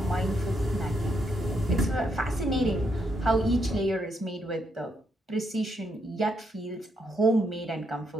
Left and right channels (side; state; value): both; normal; correlation 0.77